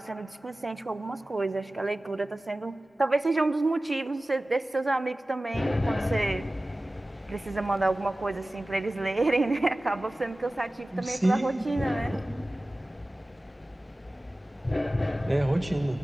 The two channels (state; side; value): normal; both; correlation 0.97